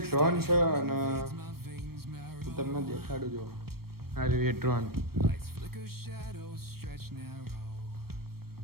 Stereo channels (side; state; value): left; late; 0.94 ms